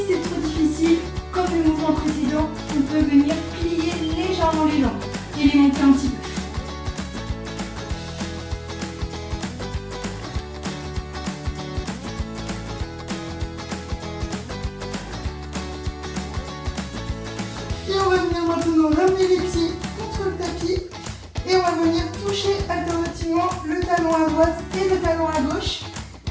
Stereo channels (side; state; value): both; identical; correlation 1.00